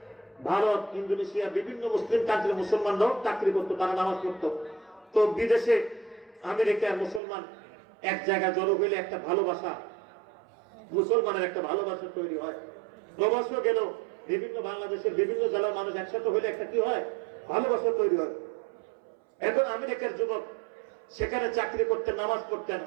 ভারত, ইন্দোনেশিয়া, বিভিন্ন মুসলিম কান্ট্রির মুসলমানরাও চাকরি করতো, তারা নামাজ পড়তো। তো বিদেশে আমেরিকার মুসলমান এক জায়গায় জড়ো হইলে একটা ভালোবাসা, মুসলমানের একটা ভালোবাসা তৈরি হয়। প্রবাসও গেল, বিভিন্ন বাংলাদেশের বিভিন্ন জেলার মানুষ একসাথে হইলে একটা কি হয়? ভালোবাসা তৈরি হয়। এখন আমেরিকার যুবক সেখানে চাকরি করতেন, নামাজ পড়তেন।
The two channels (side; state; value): left; drops out; at 7.2 s